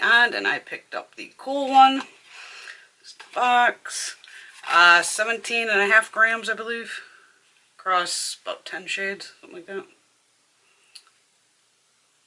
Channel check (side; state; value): both; identical; correlation 1.00